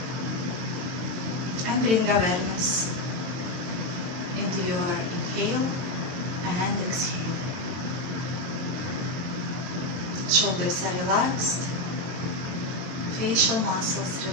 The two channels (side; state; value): left; late; 23 ms